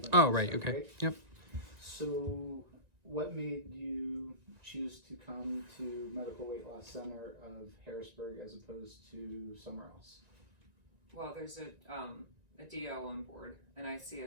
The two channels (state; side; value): late; left; 1.9 ms